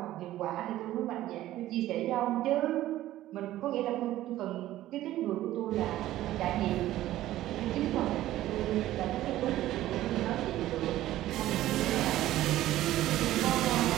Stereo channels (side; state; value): left; quieter; 14.5 dB